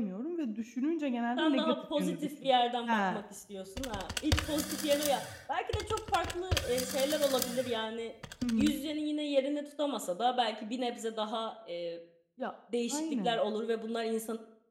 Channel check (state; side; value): identical; both; correlation 1.00